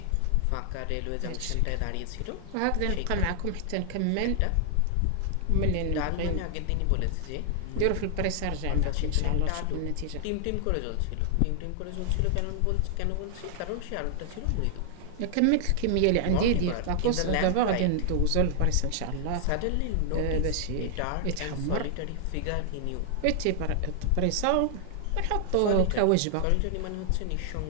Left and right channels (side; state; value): both; different; correlation 0.00